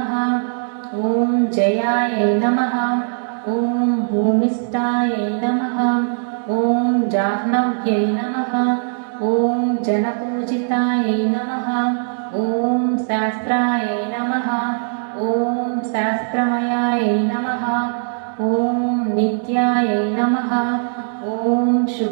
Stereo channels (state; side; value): silent; left; digital silence